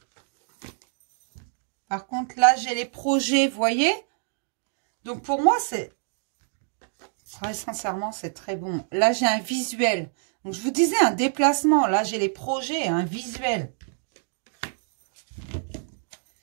Par contre, là, j'ai les projets, vous voyez? Donc, pour moi, très sincèrement, c'est très bon. Là, j'ai un visuel. Donc, je vous disais un déplacement. Là, j'ai les projets, un visuel.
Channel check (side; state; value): left; silent; 61 dB below the other